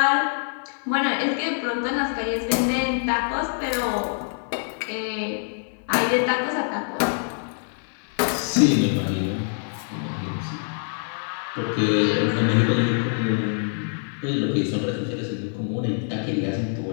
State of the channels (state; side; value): silent; right; 62 dB below the other